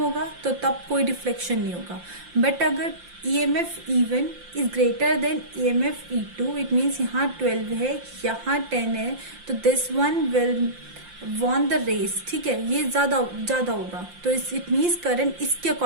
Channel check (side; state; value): left; late; 5.7 ms